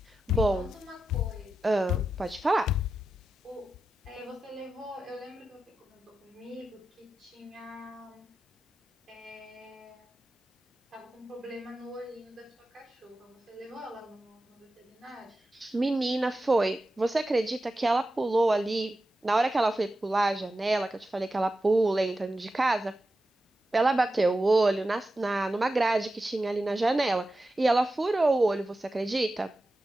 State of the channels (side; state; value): both; normal; correlation 0.92